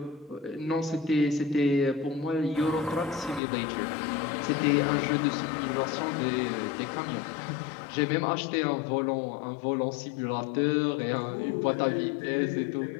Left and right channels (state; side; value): drops out; right; at 3.4 s